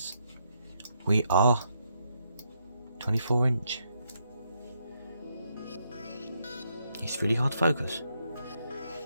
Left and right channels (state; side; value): inverted; both; correlation -0.78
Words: we are 24-inch. It's really hard to focus.